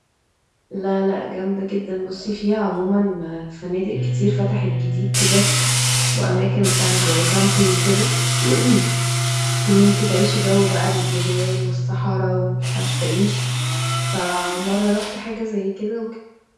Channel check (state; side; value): identical; both; correlation 1.00